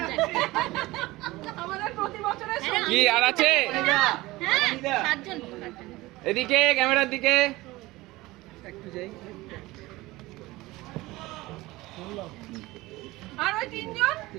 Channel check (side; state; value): left; quieter; 19.7 dB